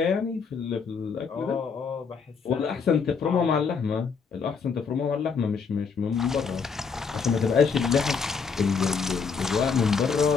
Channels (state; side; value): quieter; right; 5.6 dB